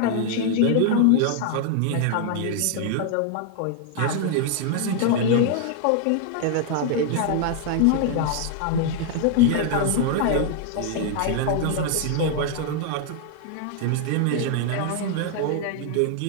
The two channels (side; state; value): both; different; correlation 0.00